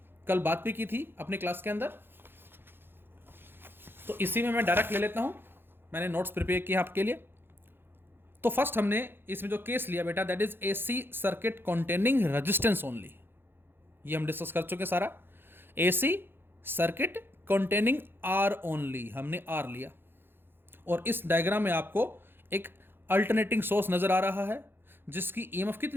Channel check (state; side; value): late; left; 0.10 ms